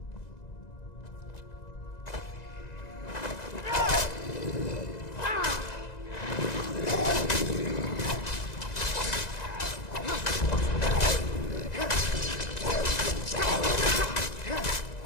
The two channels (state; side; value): late; right; 1.9 ms